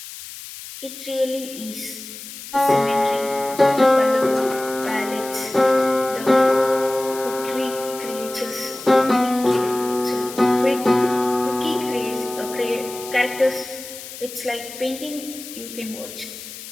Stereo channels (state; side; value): noise; left; hiss, 13 dB below the sound